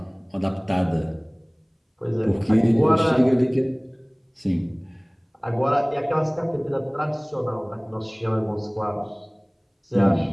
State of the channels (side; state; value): both; identical; correlation 1.00